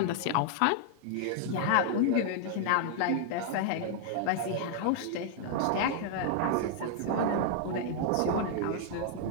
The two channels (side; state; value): both; different; correlation 0.00